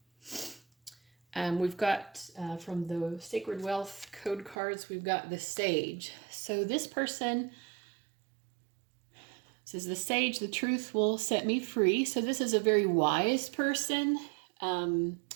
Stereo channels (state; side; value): drops out; left; at 4.5 s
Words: We've got from the Sacred Wealth code cards, we've got the Sage. So this person says, the Sage, the truth will set me free. So this is a very wise person.